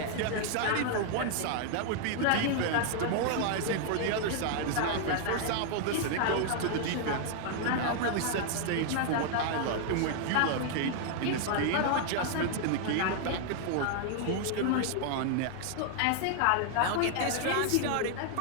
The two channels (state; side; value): different; both; correlation 0.00